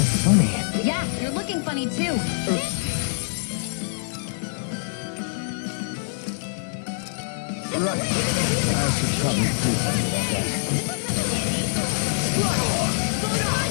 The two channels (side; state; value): right; silent; digital silence